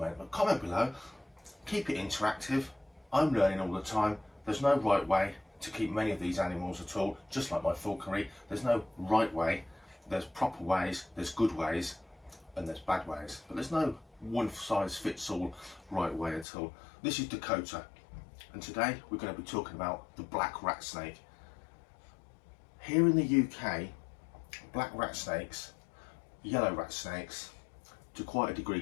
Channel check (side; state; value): right; drops out; at 16.4 s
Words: but comment below. Keep it interactive. I'm learning all the time. There's no right way to keep many of these animals at all, just like my falconry. There's no right way. There's proper ways, there's good ways, and there's bad ways. But there's no one size fits all right way at all. This is Dakota, and today we're going to be talking about the black rat snake. Here in the UK, black rat snakes, yellow rat snakes, to quite a degree